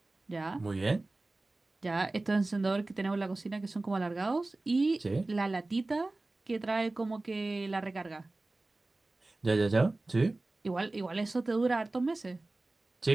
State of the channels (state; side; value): quieter; left; 3.0 dB